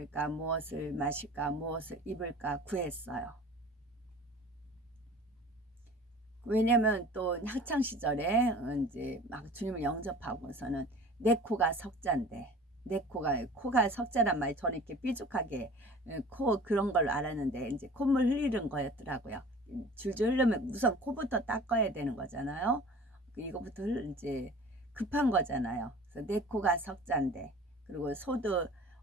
무엇을 마실까, 무엇을 입을까 구했어요. 왜냐면 또 학창 시절에 이제 막 주님을 영접하고서는 내 코가 석자인데 내 코가 석자란 말이 저는 이렇게 삐죽하게 코 그런 걸로 알았는데 이제 콧물 흘리는 거였더라고요. 줄줄 흐르면 우선 코부터 닦아야 되는 거잖아요. 이거부터 이제 급한 거잖아요. 그래서 내 코가 석자인데 그리고 소도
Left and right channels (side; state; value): both; normal; correlation 0.43